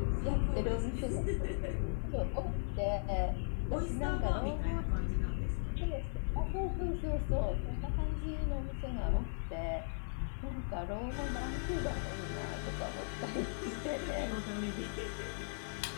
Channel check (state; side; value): silent; right; digital silence